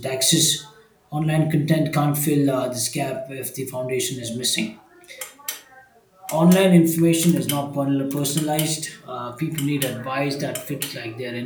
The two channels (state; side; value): identical; both; correlation 1.00